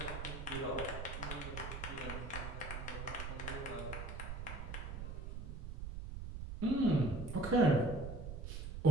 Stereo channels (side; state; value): right; noise; rumble, 7 dB below the sound